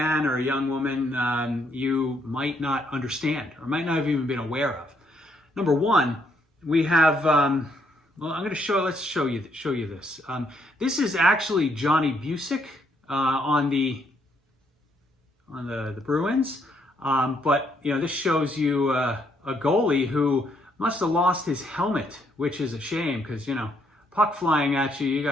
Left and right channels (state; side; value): normal; both; correlation 0.72